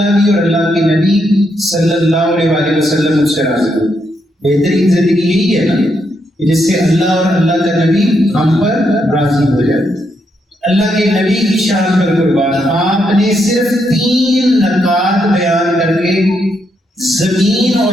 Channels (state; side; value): normal; both; correlation 0.79